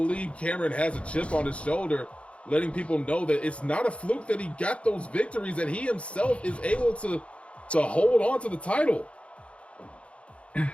Carin has a chip on his shoulder, letting people know that it's not a fluke that he got those victories, that he himself is able to hold on to the title.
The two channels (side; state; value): right; late; 0.061 ms